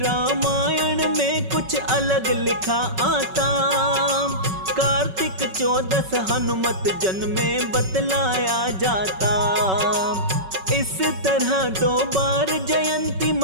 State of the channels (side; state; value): left; late; 5.3 ms